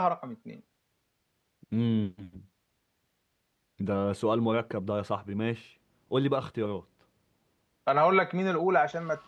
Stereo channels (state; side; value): identical; both; correlation 1.00